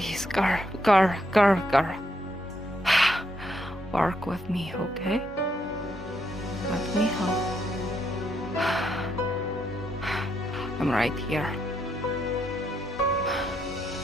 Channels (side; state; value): both; normal; correlation 0.76